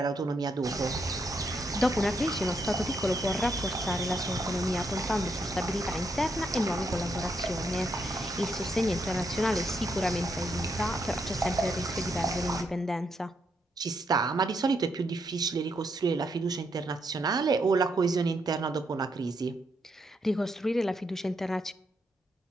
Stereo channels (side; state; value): both; normal; correlation 0.78